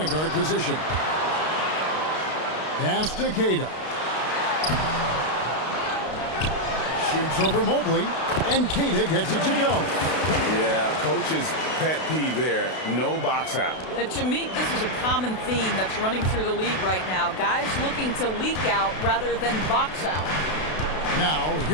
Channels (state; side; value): late; right; 32 ms